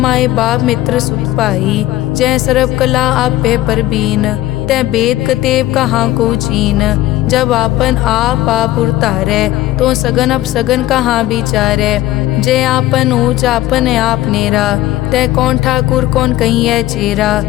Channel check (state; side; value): quieter; right; 15.5 dB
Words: बाप मित्र सुत पाई। जय सर्व कला आप पे परबीन, तै बेद कतेब कहाँ को चीन। जब आपन आप उतारे तो सगन अब सगन कहाँ विचारे। जय आपन ऊंच आपन आप नेरा, तै कौन ठाकुर कौन कहिए चेरा।